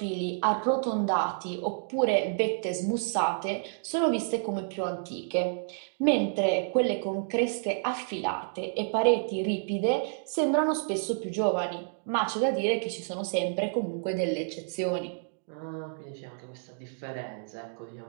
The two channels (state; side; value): silent; left; digital silence